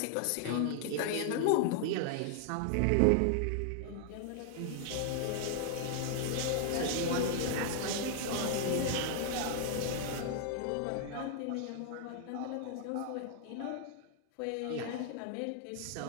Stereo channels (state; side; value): different; both; correlation 0.00